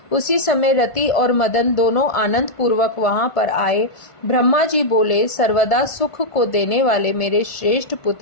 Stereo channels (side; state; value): right; late; 1.5 ms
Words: उसी समय रति और मदन दोनों आनंद पूर्वक वहां पर आए। ब्रह्मा जी बोले, सर्वदा सुख को देने वाले मेरे श्रेष्ठ